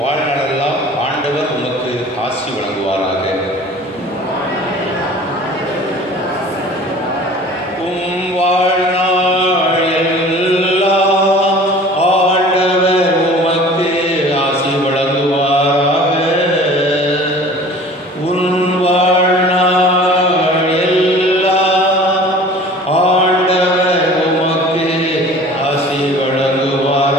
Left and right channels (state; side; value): normal; both; correlation 0.45